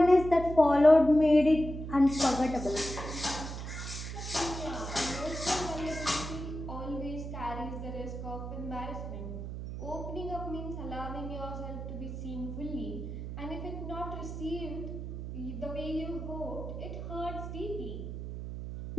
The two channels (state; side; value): noise; right; hum, 7 dB below the sound